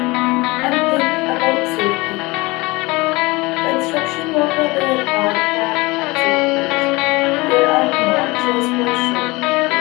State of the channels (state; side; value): quieter; right; 23.0 dB